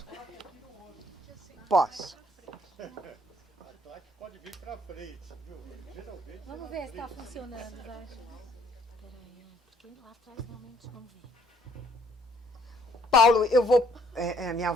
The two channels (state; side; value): normal; both; correlation 0.66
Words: Posso. Pode vir para frente, viu? Geralmente. Vamos ver se está funcionando, vai. Peraí, porque lá atrás realmente vamos ver. Paulo, eu vou... minha